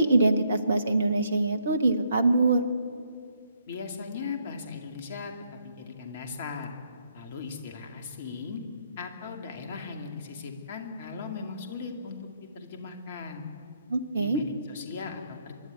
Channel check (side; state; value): both; inverted; correlation -0.72